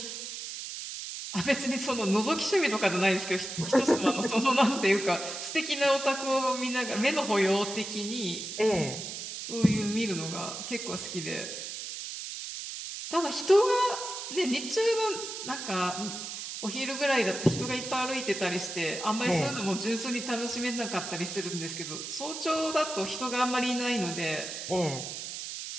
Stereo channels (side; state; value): right; noise; hiss, 7 dB below the sound